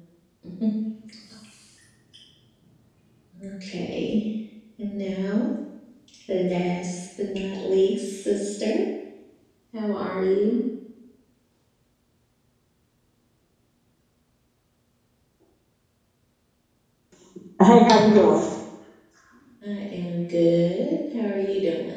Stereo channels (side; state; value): both; identical; correlation 1.00